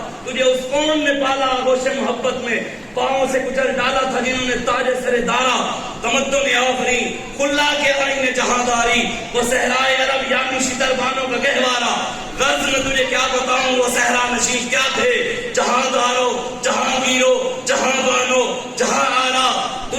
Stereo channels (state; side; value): identical; both; correlation 1.00